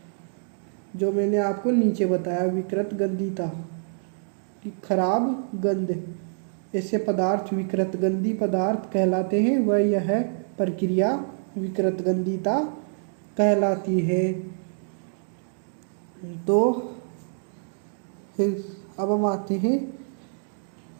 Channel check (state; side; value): silent; left; digital silence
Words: जो मैंने आपको नीचे बताया, विकृत गंधीता की खराब गंध। ऐसे पदार्थ विकृत गंधी पदार्थ कहलाते हैं। वह यह प्रक्रिया विकृत गंधीता कहलाती है। तो फिर अब हम आते हैं